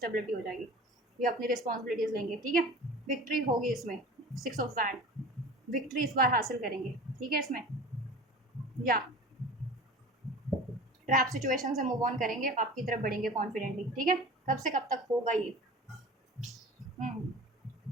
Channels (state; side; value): normal; both; correlation 0.38